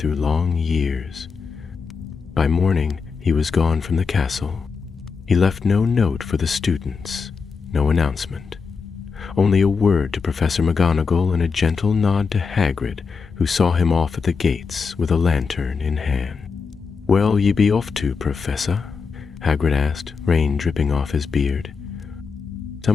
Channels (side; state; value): right; quieter; 5.3 dB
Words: long years. By morning, he was gone from the castle. He left no note for the students, no announcement. Only a word to Professor McGonagall and a gentle nod to Hagrid, who saw him off at the gates with a lantern in hand. "Where'll ye be off to, Professor?" Hagrid asked, rain dripping off his beard.